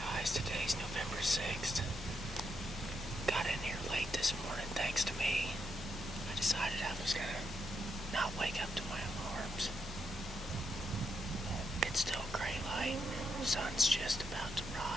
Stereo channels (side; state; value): both; normal; correlation 0.80